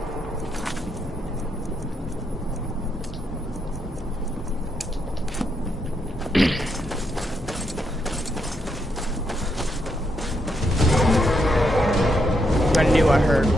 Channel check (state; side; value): normal; both; correlation 0.79